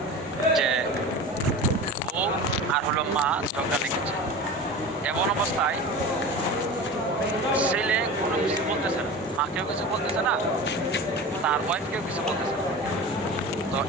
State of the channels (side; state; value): both; normal; correlation 0.33